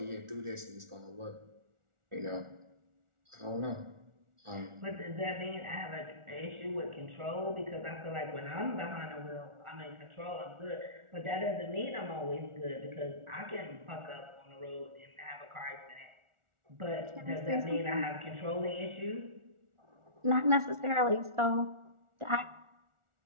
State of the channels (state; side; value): late; left; 1.4 ms